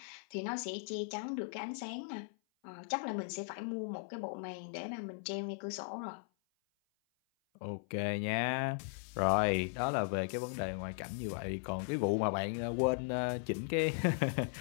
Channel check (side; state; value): right; silent; 53 dB below the other